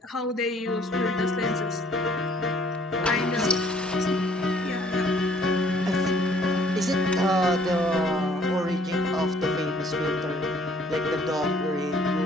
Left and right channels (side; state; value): both; normal; correlation 0.60